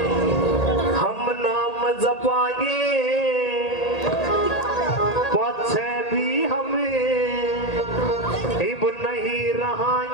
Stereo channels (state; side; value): late; right; 1.8 ms